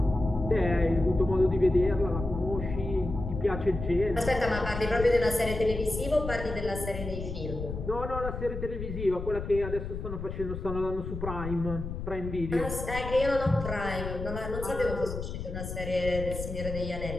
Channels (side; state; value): left; noise; rumble, 7 dB below the sound